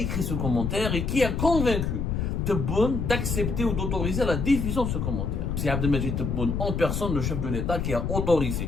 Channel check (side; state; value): left; noise; rumble, 1 dB below the sound